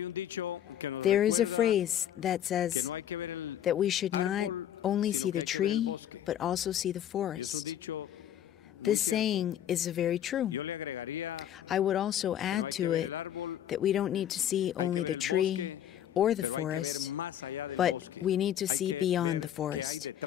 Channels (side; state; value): right; quieter; 10.7 dB